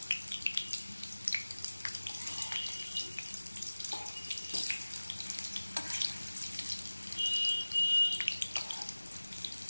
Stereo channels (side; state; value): both; inverted; correlation -1.00